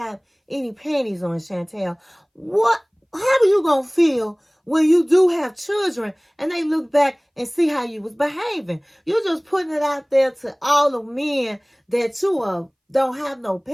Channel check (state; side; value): identical; both; correlation 1.00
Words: any panties on, Chantel. How are you going to feel when you do have children and they look back and see how you was behaving? You're just putting it out there to all the men that you don't have no